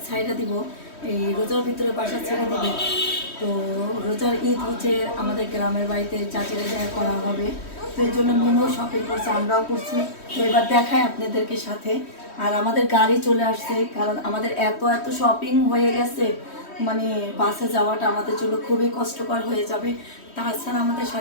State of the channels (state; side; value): late; right; 3.1 ms